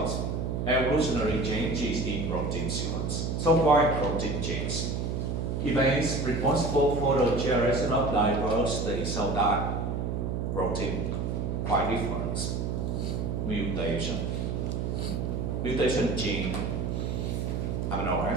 evolutionary changes in protein sequence. So why protein change? Events responsible for the generation of diversity, so that protein quite different. Mutation gene amino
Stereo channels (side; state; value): right; noise; hum, 1 dB below the sound